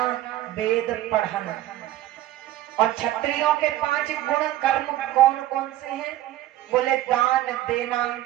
वेद पढ़ाना। और क्षत्रियों के 5 गुण कर्म कौन कौन से हैं? बोले दान देना,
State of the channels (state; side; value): quieter; left; 14.2 dB